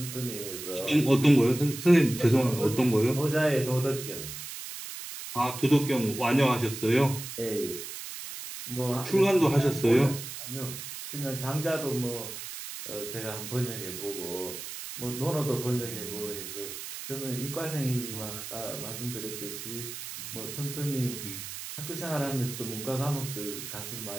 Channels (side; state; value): right; noise; hiss, 9 dB below the sound